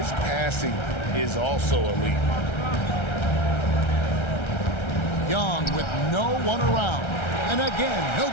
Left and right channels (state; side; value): late; right; 1.3 ms